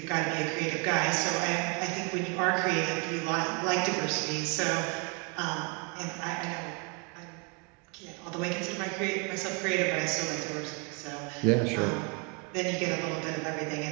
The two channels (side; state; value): left; quieter; 32.8 dB